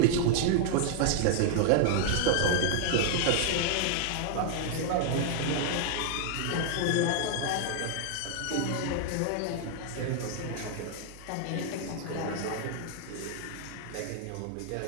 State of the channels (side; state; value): both; different; correlation 0.00